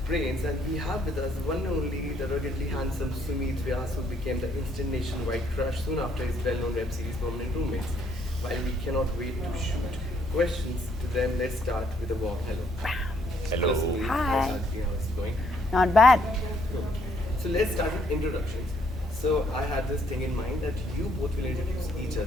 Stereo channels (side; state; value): both; normal; correlation 0.69